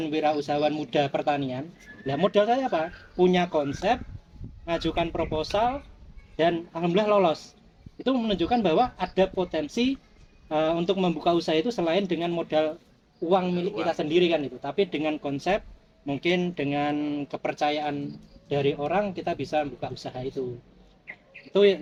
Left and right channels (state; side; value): identical; both; correlation 1.00